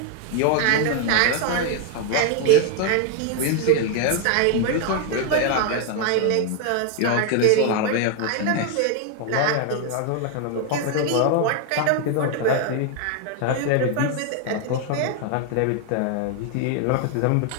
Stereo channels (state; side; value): different; both; correlation 0.00